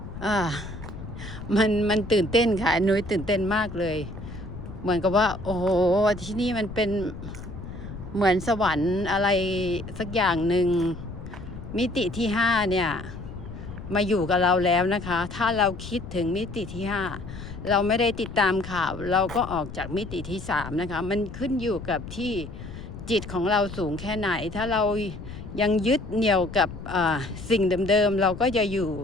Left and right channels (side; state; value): left; noise; rumble, 11 dB below the sound